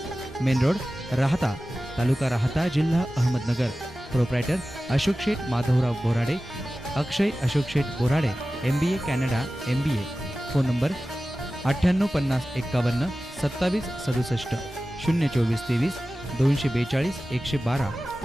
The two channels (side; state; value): both; normal; correlation 0.95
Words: मेन रोड, राहता, तालुका राहता, जिल्हा Ahmednagar. Proprietor Ashok Sheth Madhavrao Borade, Akshay Ashok Sheth Borade, MBA Canada MBA. Phone number 985051 2767 024 23 242 112